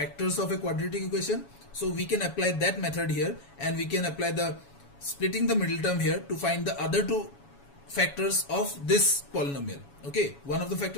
of a quadratic equation. So we can apply that method here, and we can apply the splitting the middle term here to find the other 2 factors of this polynomial. Okay, one of the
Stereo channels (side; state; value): right; late; 7.1 ms